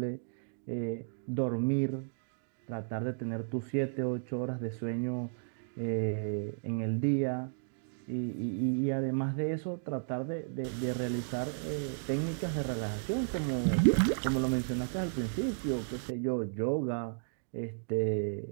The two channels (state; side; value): silent; left; digital silence